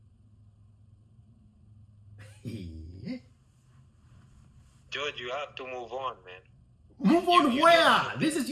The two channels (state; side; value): identical; both; correlation 1.00